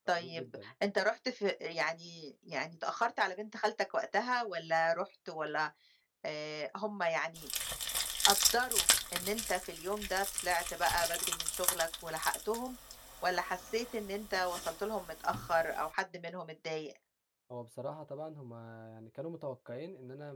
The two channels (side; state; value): both; identical; correlation 1.00